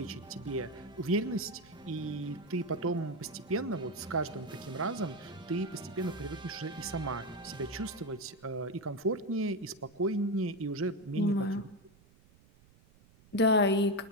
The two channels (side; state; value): right; noise; rumble, 27 dB below the sound